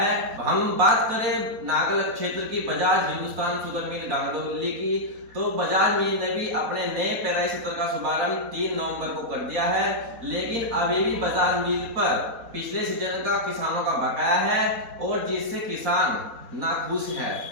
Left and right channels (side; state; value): left; late; 4.1 ms